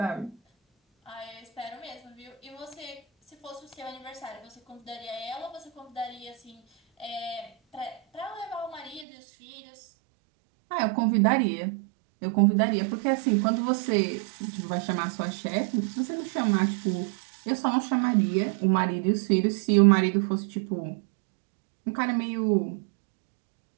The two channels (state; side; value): drops out; left; at 9.1 s